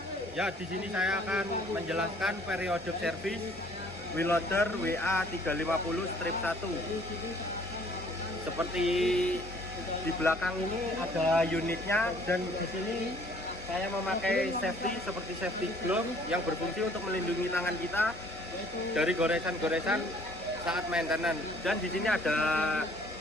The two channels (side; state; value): both; normal; correlation 0.58